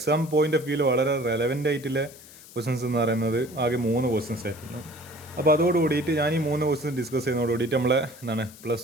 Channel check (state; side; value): noise; left; hiss, 20 dB below the sound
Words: പോയിന്റ് ഓഫ് വ്യൂവിൽ വളരെ റെലവൻ്റ് ആയിട്ടുള്ള ക്വസ്റ്റ്യൻസ് എന്ന് പറയുന്നത് ആകെ 3 ക്വസ്റ്റ്യൻസ് ആയിരുന്നു. അപ്പോൾ അതോട് കൂടിയിട്ട് ഞാൻ ഈ 3 ക്വസ്റ്റ്യൻസ് ഡിസ്കസ് ചെയ്യുന്നതോട് കൂടിയിട്ട് നമ്മളെ എന്താണ്